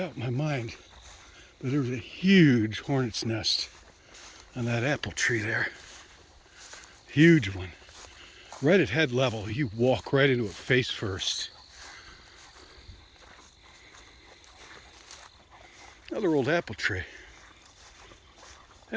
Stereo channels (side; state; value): both; identical; correlation 1.00